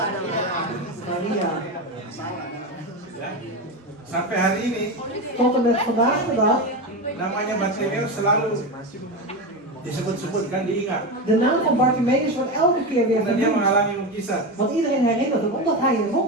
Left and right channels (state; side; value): normal; both; correlation 0.18